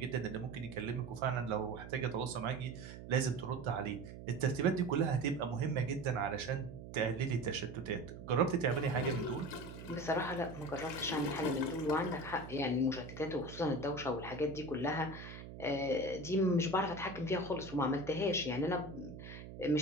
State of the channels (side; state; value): right; noise; hum, 12 dB below the sound